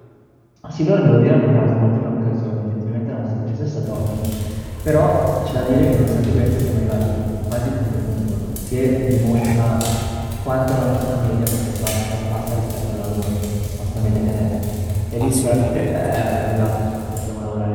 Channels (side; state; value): both; identical; correlation 1.00